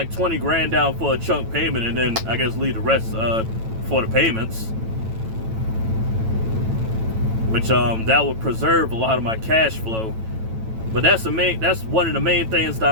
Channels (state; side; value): late; left; 9.0 ms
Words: 20 grand down for a chunk payment, and then I guess leave the rest for the payments. Which that would preserve a lot of my cash flow. But that's one of the main things that